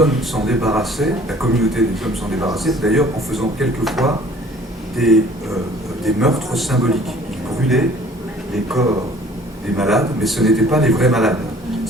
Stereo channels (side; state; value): both; normal; correlation 0.52